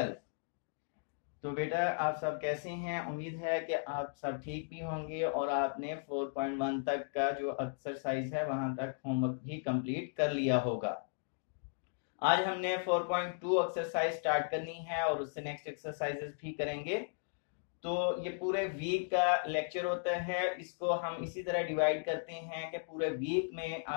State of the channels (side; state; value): right; silent; digital silence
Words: तो बेटा आप सब कैसे हैं? उम्मीद है कि आप सब ठीक भी होंगे और आपने 4.1 तक का जो एक्सरसाइज है वहां तक होमवर्क भी कंप्लीट कर लिया होगा। आज हमने 4.2 एक्सरसाइज स्टार्ट करनी है और उससे नेक्स्ट एक्सरसाइजेस भी करेंगे। तो ये पूरे वीक का लेक्चर होता है, इसको हम इसी तरह डिवाइड करते हैं कि पूरे वीक में